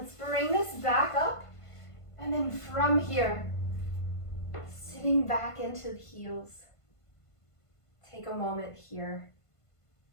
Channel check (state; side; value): late; right; 1.5 ms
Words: bring this back up. And then from here, sitting back into the heels. Take a moment here.